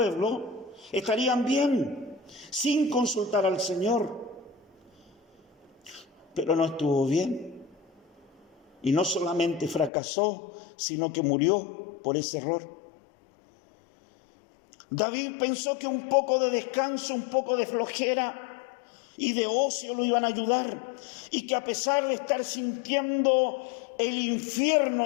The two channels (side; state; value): right; drops out; at 9.9 s